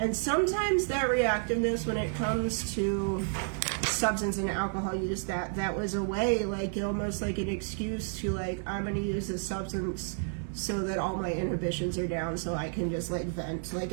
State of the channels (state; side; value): silent; left; digital silence